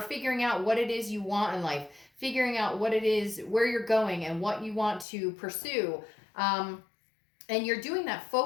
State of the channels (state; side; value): drops out; right; at 5.1 s